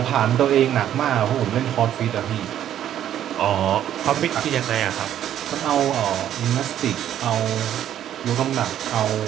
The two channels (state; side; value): quieter; left; 10.9 dB